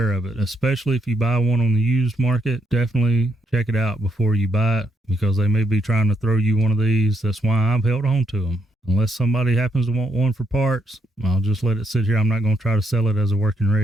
of it, especially if you buy one on the used market. Definitely check it out before you buy it, because they may be trying to throw you one of these. That's why I've held on to them. Unless somebody happens to want one for parts, I'll just let it sit here. I'm not going to try to sell it as a working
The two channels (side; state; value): both; normal; correlation 0.77